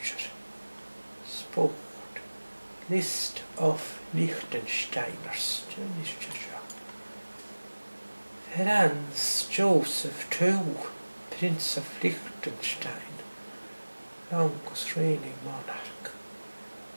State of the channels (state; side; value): inverted; both; correlation -1.00